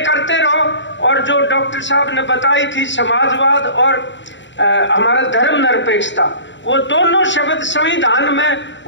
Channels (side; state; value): right; late; 0.54 ms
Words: रहो। और जो डॉक्टर साहब ने बताई थी समाजवाद और हमारा धर्म निरपेक्षता, वो दोनों शब्द संविधान में